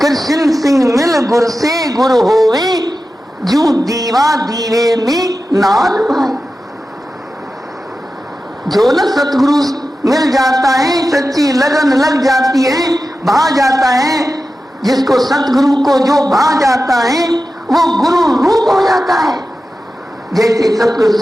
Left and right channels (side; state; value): both; normal; correlation 0.93